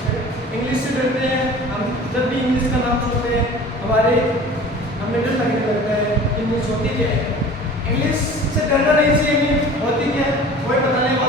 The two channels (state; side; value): normal; both; correlation 0.42